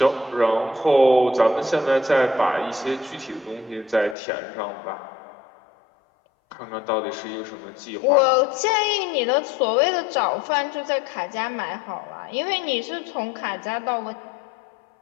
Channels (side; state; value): right; drops out; at 4.2 s